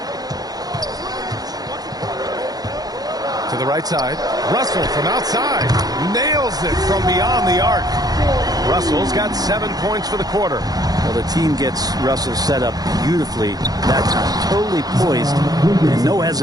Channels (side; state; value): left; late; 0.19 ms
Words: To the right side. Russell from outside. Nails it from beyond the arc. Russell's got 7 points for the quarter. Well, the team gets Russell set up beautifully that time. Totally poised and no